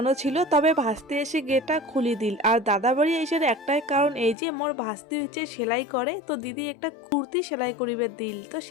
ছিল, তবে ভাসতে এসে গেটটা খুলে দিল। আর দাদা বাড়ি আসার একটাই কারণ এই যে মোর ভাসতে হচ্ছে সেলাই করে, তো দিদি একটা কুর্তি সেলাই করিবে দিল, তো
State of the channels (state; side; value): drops out; right; at 4.4 s